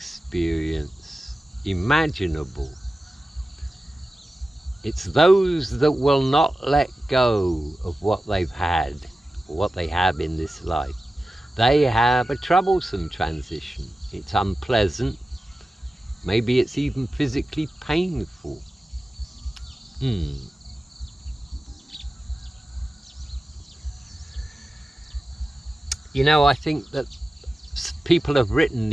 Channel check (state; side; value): normal; both; correlation 0.94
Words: imaginable. It's those that will not let go of what they've had, or what they have in this life. They have a troublesome transition. It's unpleasant. Maybe it's even physically painful. You know, I think that people have written